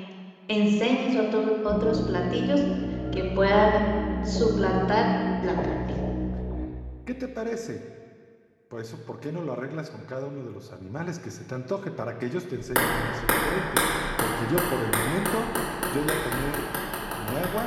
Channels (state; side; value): identical; both; correlation 1.00